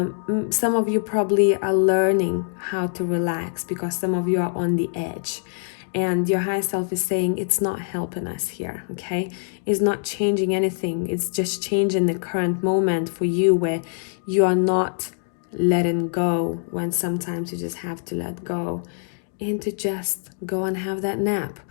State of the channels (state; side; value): silent; right; digital silence